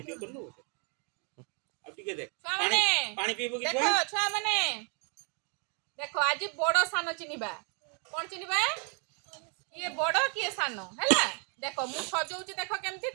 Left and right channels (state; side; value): quieter; left; 37.9 dB